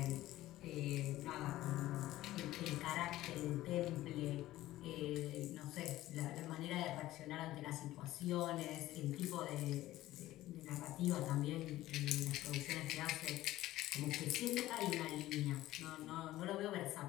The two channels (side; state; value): right; quieter; 15.7 dB